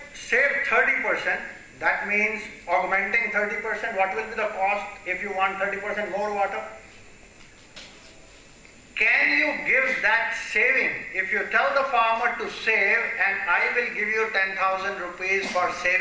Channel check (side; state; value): both; identical; correlation 1.00